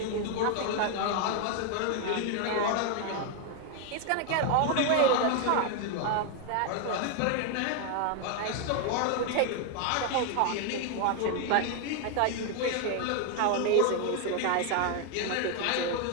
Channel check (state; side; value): different; both; correlation 0.01